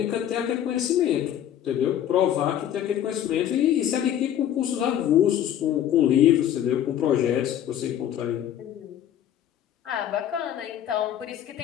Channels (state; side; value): quieter; right; 10.8 dB